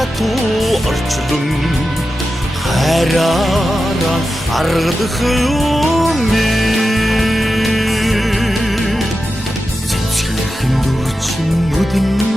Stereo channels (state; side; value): normal; both; correlation 0.91